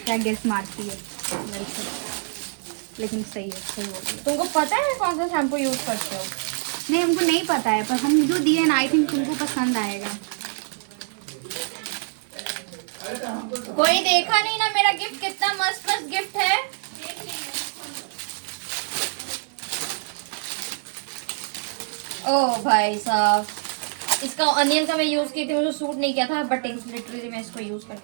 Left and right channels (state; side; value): silent; left; 60 dB below the other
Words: क्या गेस मारती है। लेकिन सही है, सही है। तुमको पता है कौन सा शैम्पू यूज करते हो? नहीं हमको नहीं पता है, पर हम जो दिए ना आई थिंक तुमको पसंद आएगा। कोई देखा नहीं ना मेरा गिफ्ट कितना मस्त मस्त गिफ्ट है। ओ भाई साहब, इसका अनियन का मैं यूज की थी, मुझे सूट नहीं किया था, बट लिटरली मैं इसको यूज